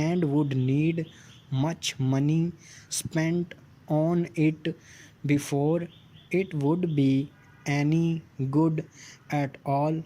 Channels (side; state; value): both; identical; correlation 1.00